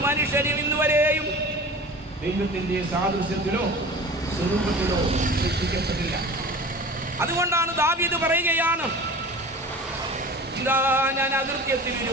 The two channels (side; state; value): both; normal; correlation 0.38